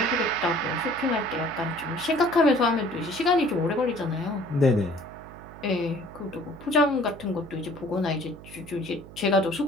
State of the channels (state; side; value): noise; right; hum, 17 dB below the sound